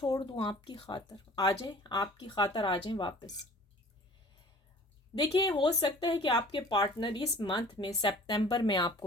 दूं आपकी खातर, आ जाए आपकी खातर, आ जाए वापस। देखिए, हो सकता है कि आपके पार्टनर इस मंथ में सितंबर में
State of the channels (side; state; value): both; normal; correlation 0.48